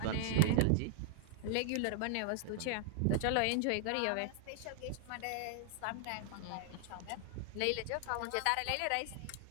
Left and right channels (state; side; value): different; both; correlation 0.00